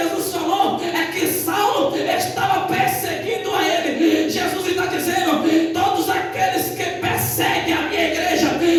falou que Saulo estava perseguindo a ele. Jesus está dizendo: todos aqueles que perseguem a minha igreja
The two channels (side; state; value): both; identical; correlation 1.00